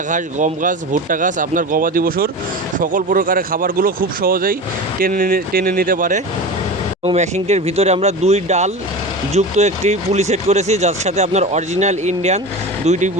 ঘাস, গম ঘাস, ভুট্টা ঘাস, আপনার গবাদি পশুর সকল প্রকারের খাবারগুলো খুব সহজেই টেনে নিতে পারে। এবং মেশিনটির ভিতরে আমরা 2 ডাল যুক্ত একটি পুলি সেট করেছি, যার সাথে আপনার অরিজিনাল ইন্ডিয়ান 2টি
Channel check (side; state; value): both; normal; correlation 0.29